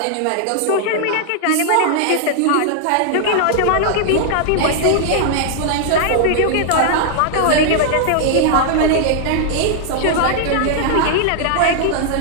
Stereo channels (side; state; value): both; different; correlation -0.01